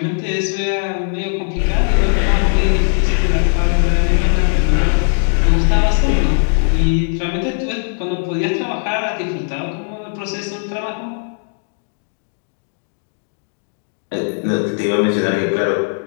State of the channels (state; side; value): silent; right; digital silence